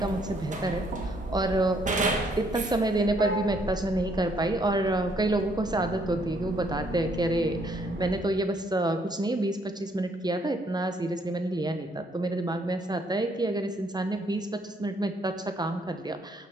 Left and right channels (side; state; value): both; normal; correlation 0.68